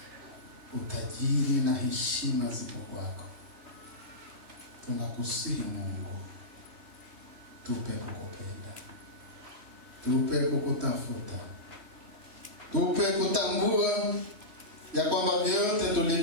utajiri na heshima zipo kwako. Tunakusihi Mungu, tupe kukupenda, tupe kukutafuta, tupe kutambua ya kwamba vyote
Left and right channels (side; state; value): left; late; 3.1 ms